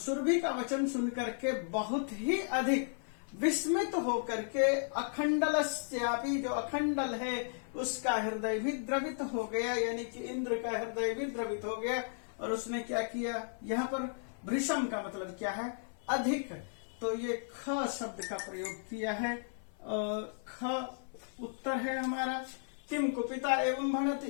का वचन सुन करके बहुत ही अधिक विस्मित होकर के, अखंडलस्यापि जो अखंडल है उसका हृदय भी द्रवित हो गया, यानी कि इंद्र का हृदय भी द्रवित हो गया। और उसने क्या किया, यहाँ पर भृशम का मतलब क्या है, अधिक, तो ये ख शब्द का प्रयोग किया है, ख उत्तर है हमारा। किम कुपिता एवं भनति,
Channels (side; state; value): right; silent; 55 dB below the other